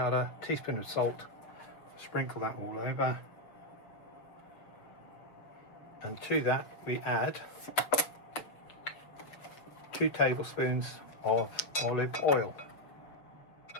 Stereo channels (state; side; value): late; right; 6.5 ms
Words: teaspoon of salt. Sprinkle that all over. And to that we add 2 tablespoons of olive oil.